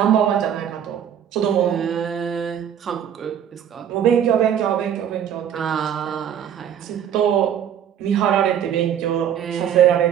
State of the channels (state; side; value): quieter; left; 9.4 dB